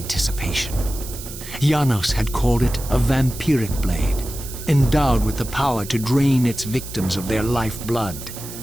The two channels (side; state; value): right; noise; hiss, 12 dB below the sound